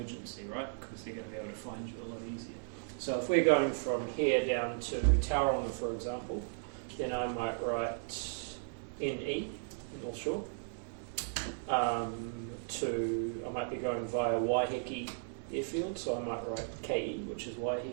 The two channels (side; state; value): left; silent; 54 dB below the other